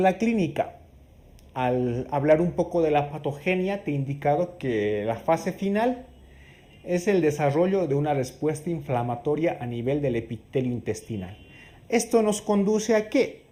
clínica? Al hablar un poco de la patogenia te he indicado que la fase final es el desarrollo de una respuesta inflamatoria a nivel del epitelio intestinal. Esto nos conduce ¿a qué?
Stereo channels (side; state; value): both; identical; correlation 1.00